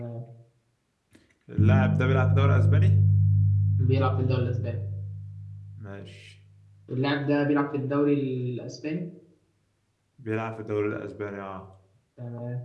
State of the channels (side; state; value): both; identical; correlation 1.00